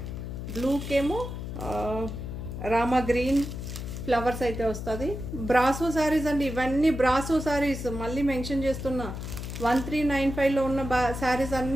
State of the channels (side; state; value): left; noise; hum, 7 dB below the sound